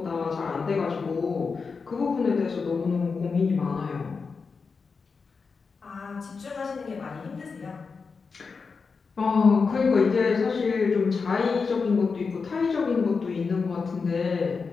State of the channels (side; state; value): right; quieter; 4.9 dB